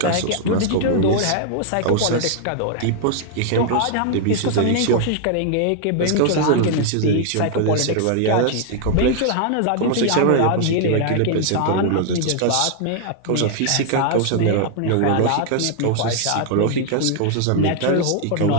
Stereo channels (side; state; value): both; different; correlation 0.00